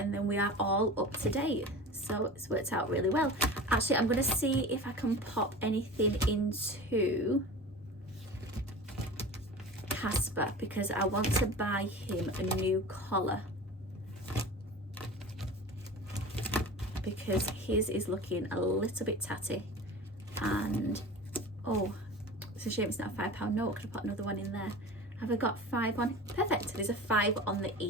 then we are all up to date. So it's worked out really well. Actually, I'm going to see if I can pop anything into Casper, because I want to buy him a new collar, because his is looking a little bit tatty. And oh, it's a shame it's not a £5 note. I could have put another one in there. Have I got 5 on? Perfect. There's a 5 on the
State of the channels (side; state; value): both; normal; correlation 0.35